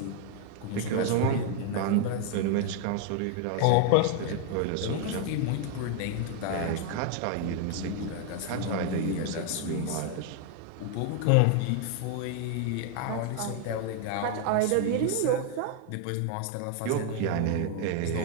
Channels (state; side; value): different; both; correlation 0.01